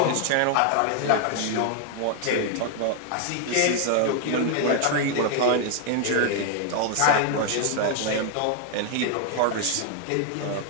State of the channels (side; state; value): both; different; correlation 0.00